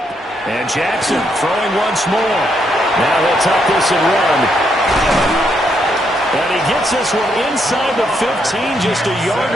And Jackson throwing once more. Now he'll tuck this and run. And he gets this one inside the 15, just a yard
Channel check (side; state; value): both; normal; correlation 0.76